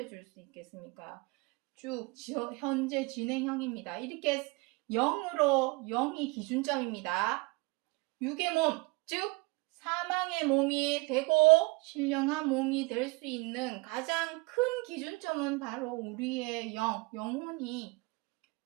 수 있겠습니까? 쭉 현재 진행형입니다. 이렇게 영이 기준점입니다. 육의 몸, 즉 사망의 몸이 되고 신령한 몸이 될 수 있는 가장 큰 기준점은 바로 우리의 영혼이.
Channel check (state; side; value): quieter; left; 26.4 dB